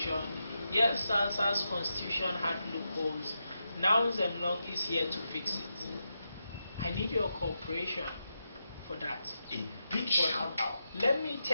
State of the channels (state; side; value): inverted; both; correlation -0.87